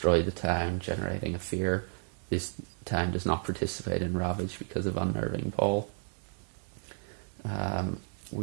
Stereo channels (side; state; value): left; silent; 56 dB below the other